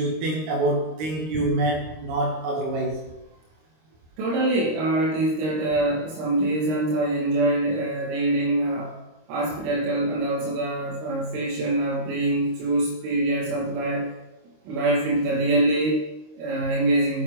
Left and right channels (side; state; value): left; late; 26 ms